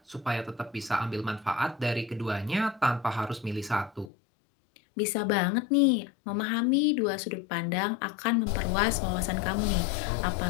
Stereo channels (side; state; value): right; drops out; at 4.1 s